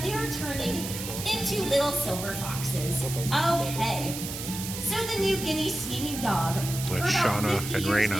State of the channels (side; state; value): right; noise; hiss, 7 dB below the sound